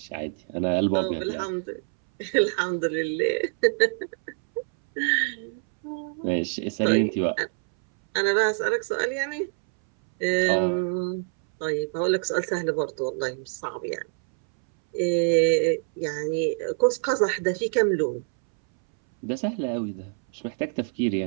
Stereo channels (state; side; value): silent; left; 61 dB below the other